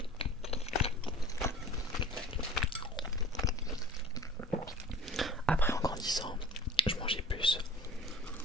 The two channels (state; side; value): normal; both; correlation 0.43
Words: Après en grandissant, je mangeais plus.